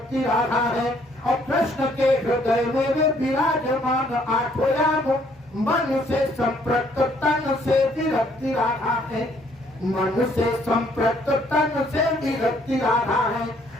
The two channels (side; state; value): both; normal; correlation 0.65